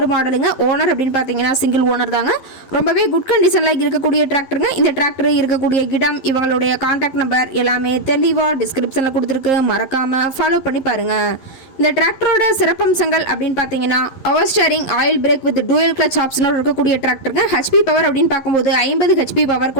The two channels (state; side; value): late; right; 11 ms